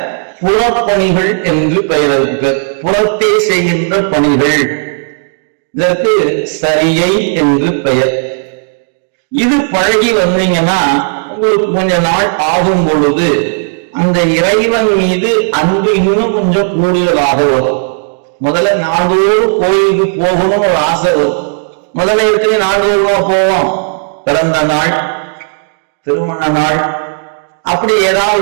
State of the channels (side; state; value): left; silent; digital silence